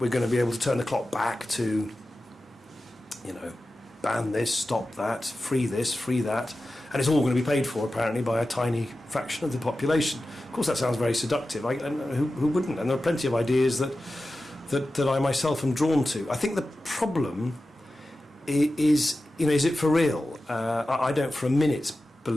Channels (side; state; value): both; normal; correlation 0.94